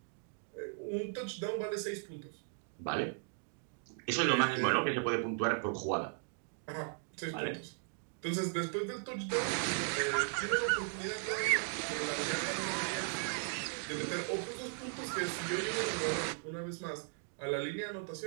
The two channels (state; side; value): silent; left; 53 dB below the other